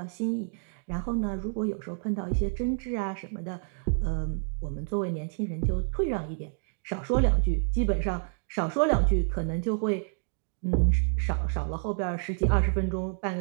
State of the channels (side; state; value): left; silent; digital silence